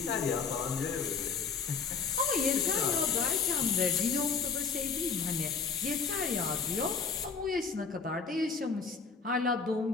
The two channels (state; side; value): quieter; right; 5.4 dB